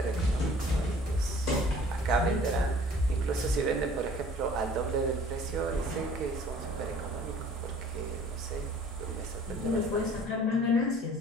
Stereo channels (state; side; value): normal; both; correlation 0.51